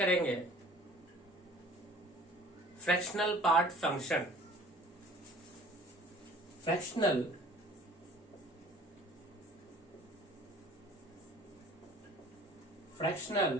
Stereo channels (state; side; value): normal; both; correlation 0.49